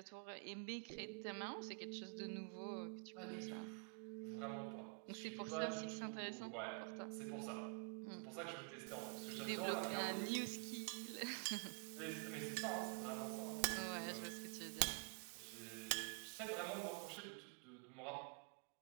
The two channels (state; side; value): quieter; left; 36.8 dB